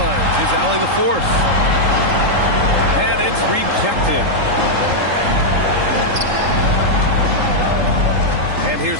is Allie LaForce. And it's rejected. And here's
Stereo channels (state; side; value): late; left; 3.8 ms